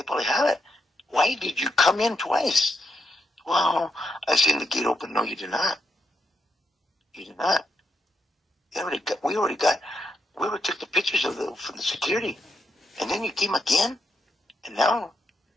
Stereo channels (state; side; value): normal; both; correlation 0.82